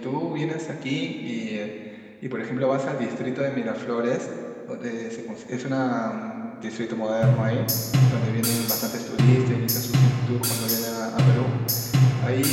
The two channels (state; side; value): identical; both; correlation 1.00